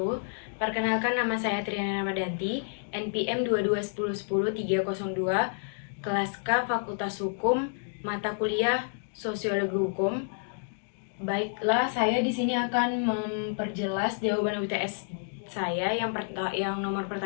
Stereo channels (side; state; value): right; silent; digital silence